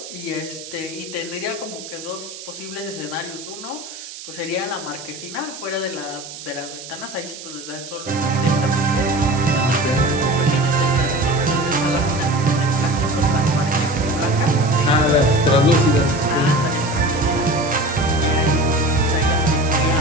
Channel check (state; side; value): noise; right; hiss, 13 dB below the sound